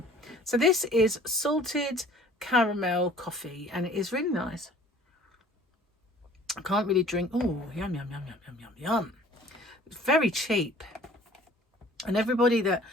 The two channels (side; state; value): both; normal; correlation 0.52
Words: So this is salted caramel coffee, and it is really nice. I can't really drink. Oh, yum, yum, yum, yum, yum, yum, yum. It's very cheap. And everybody that...